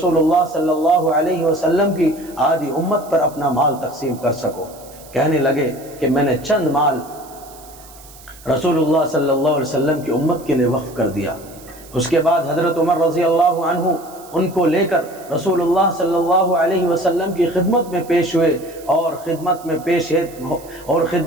اللہ صلی اللہ علیہ وسلم کی آدھی امت پر اپنا مال تقسیم کر سکو۔ کہنے لگے کہ میں نے چند مال رسول اللہ صلی اللہ علیہ وسلم کی امت کے لیے وقف کر دیا۔ اس کے بعد حضرت عمر رضی اللہ عنہ ان کو لے کر رسول اللہ صلی اللہ علیہ وسلم کی خدمت میں پیش ہوئے، اور خدمت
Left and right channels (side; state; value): right; noise; hiss, 21 dB below the sound